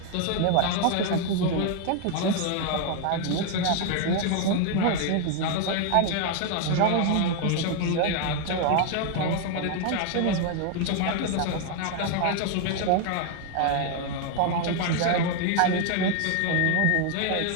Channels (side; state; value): both; different; correlation 0.01